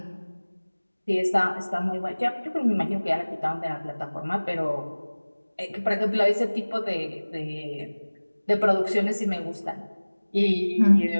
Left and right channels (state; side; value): inverted; both; correlation -1.00